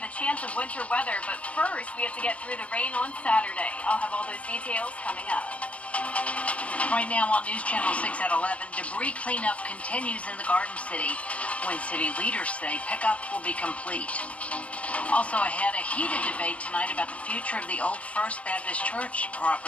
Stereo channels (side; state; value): right; late; 0.064 ms